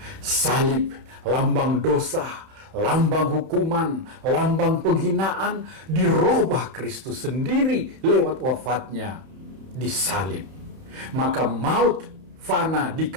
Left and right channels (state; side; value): late; left; 31 ms